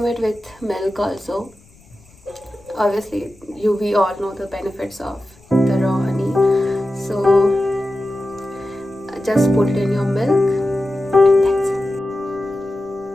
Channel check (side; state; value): left; noise; rumble, 28 dB below the sound